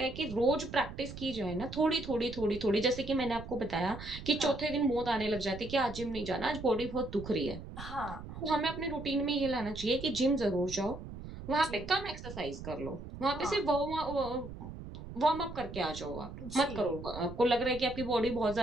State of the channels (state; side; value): noise; right; rumble, 11 dB below the sound